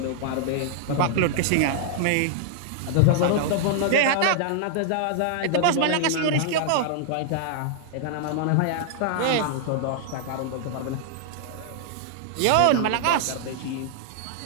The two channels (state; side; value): different; both; correlation -0.01